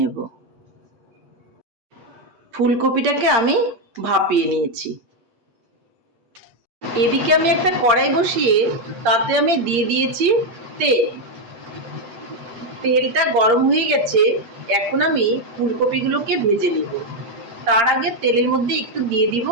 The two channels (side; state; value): left; late; 8.6 ms